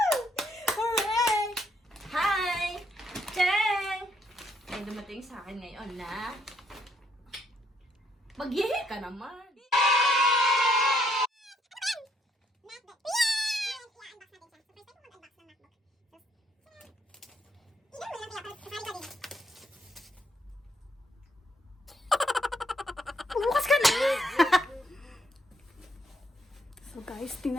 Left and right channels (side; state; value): both; normal; correlation 0.71